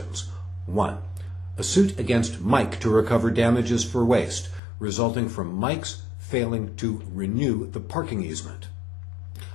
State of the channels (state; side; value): drops out; right; at 4.6 s